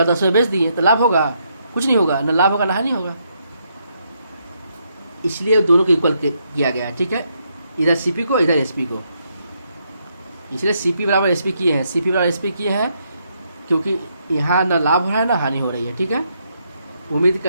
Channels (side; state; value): both; inverted; correlation -0.76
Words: 10 में बेच दिए तो लाभ होगा? कुछ नहीं होगा, न लाभ होगा ना हानि होगा। इसलिए दोनों को इक्वल किया गया है, ठीक है, इधर CP को इधर SP को, इसलिए CP बराबर SP किए हैं, CP बराबर SP किए हैं क्योंकि यहाँ ना लाभ हो रहा है ना हानि हो रही है, ठीक है। उम्मीद